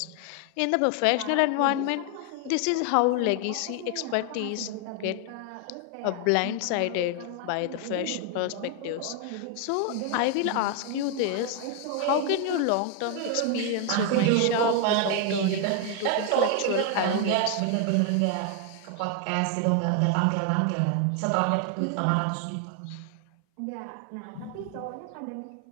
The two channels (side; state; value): both; different; correlation 0.01